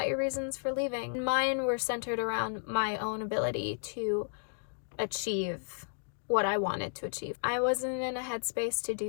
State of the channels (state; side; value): silent; right; digital silence